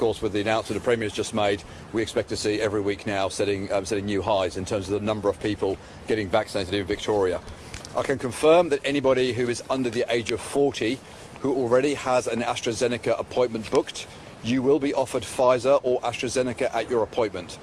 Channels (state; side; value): identical; both; correlation 1.00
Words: with the announcement the Premier's just made, we expect to see every week now setting new highs in terms of the number of people getting vaccinated in Victoria. I can confirm that anybody who is under the age of 40 who already has an AstraZeneca appointment booked, you will be offered Pfizer or AstraZeneca at your appointment.